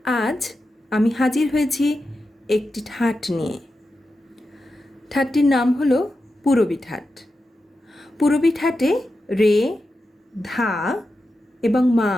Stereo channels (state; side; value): normal; both; correlation 0.90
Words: আজ আমি হাজির হয়েছি একটি ঠাট নিয়ে। ঠাটটির নাম হলো পূরবী ঠাট। পূরবী ঠাটে রে, ধা এবং মা